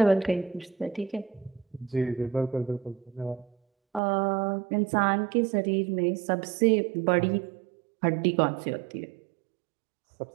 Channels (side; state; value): left; drops out; at 4.0 s